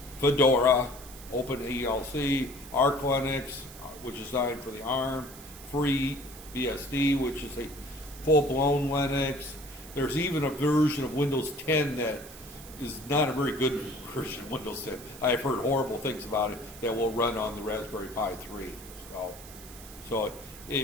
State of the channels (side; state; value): right; noise; hiss, 17 dB below the sound